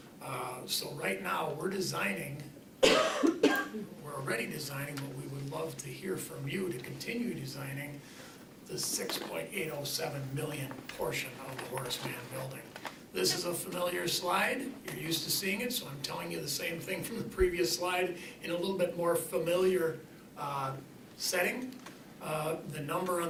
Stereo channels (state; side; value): identical; both; correlation 1.00